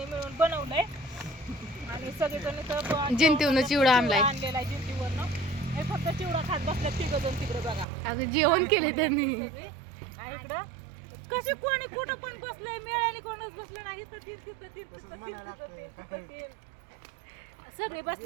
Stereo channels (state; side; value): drops out; left; at 7.9 s